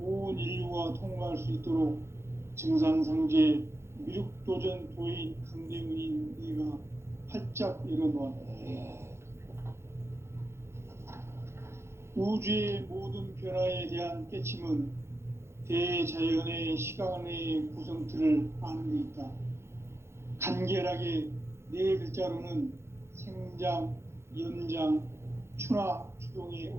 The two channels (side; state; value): left; late; 0.13 ms